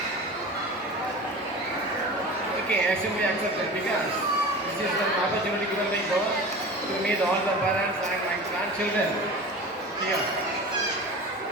Okay, I simply accepted because this is an opportunity given by God to meet all the parents and my grandchildren here.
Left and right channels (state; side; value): normal; both; correlation 0.34